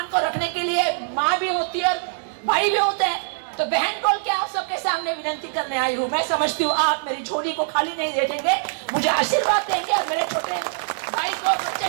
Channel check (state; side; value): silent; left; 59 dB below the other